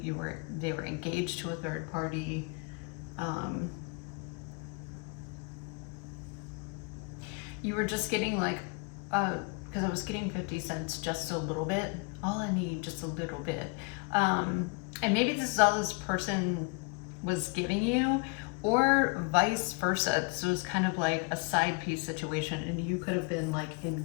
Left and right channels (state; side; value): quieter; right; 31.6 dB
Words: they were engaged to a third party. You were just getting like, because I was getting 50 cents just a little bit. All I need, just a little bit. And maybe this is all this person was giving you, or vice versa. This was kind of like a side piece situation, and you could have been like